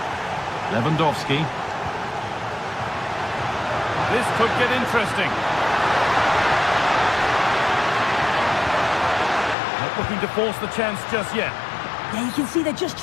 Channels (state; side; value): drops out; right; at 9.6 s